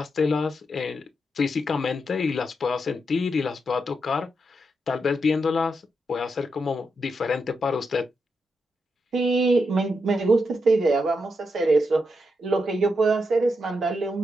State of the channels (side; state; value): both; normal; correlation 0.84